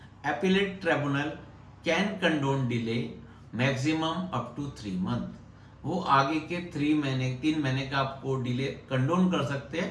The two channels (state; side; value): identical; both; correlation 1.00